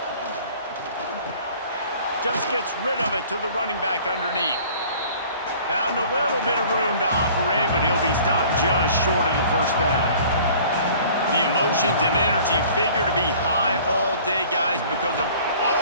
Just gets rid of it to the running back underneath. Found a little bit of room to operate, but he'll be stopped just short of the first down. The emotions and energy figure to be high all day, guys, because of...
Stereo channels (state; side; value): inverted; both; correlation -0.50